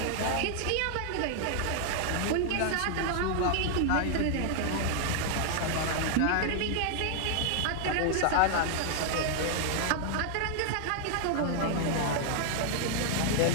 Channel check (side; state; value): both; different; correlation 0.00